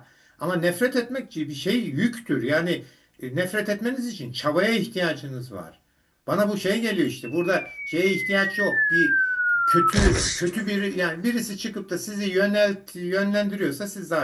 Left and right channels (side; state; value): both; identical; correlation 1.00